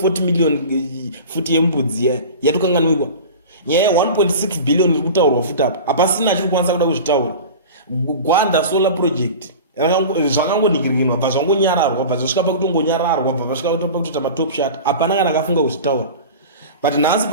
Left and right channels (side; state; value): both; inverted; correlation -0.34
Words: million futi yembudzi yatokanganwikwa. Nyaya 1.6 billion iri kutaurwa futi apa hapasina achiri kwanisa kuda kuzvitaura. Gwanda solar project zvakangoningirwa bva zvangonyararwa bva zvasvika pakutongonyararwa bva zvasvika pakutoita matop shot hapana kana akafunga kuzvitaura. But nhasi